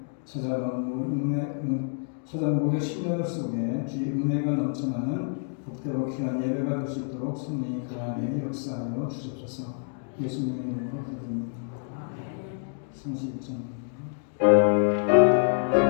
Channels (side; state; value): right; silent; 60 dB below the other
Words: 찾아놓은 목의 신령 속에 주의 은혜가 넘쳐나는 복되고 귀한 예배가 될 수 있도록 성령이 그 안에 역사하여 주옵소서. 예수님의 이름으로 기도드립니다. 31장